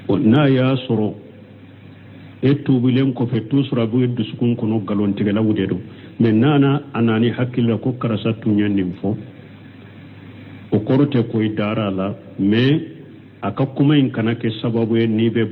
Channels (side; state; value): both; identical; correlation 1.00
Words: n'a y'a sɔrɔ e tuubilen kɔfɛ toujours a bɛ dusukun kɔnɔ nkalontigɛlaw de don mais n'a nani hakili la ko karasa tun ye nin fɔ o kɔrɔ tɛ ko i dara a la mais a ka kuma in kana kɛ sababu ye n'i